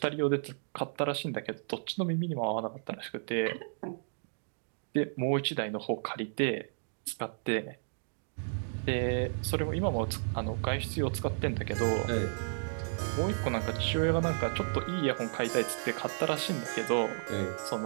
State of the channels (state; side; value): silent; left; digital silence